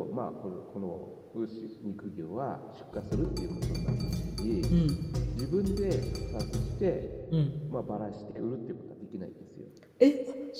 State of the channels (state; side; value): identical; both; correlation 1.00